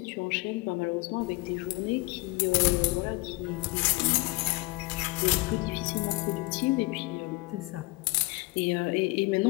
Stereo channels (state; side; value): quieter; right; 24.3 dB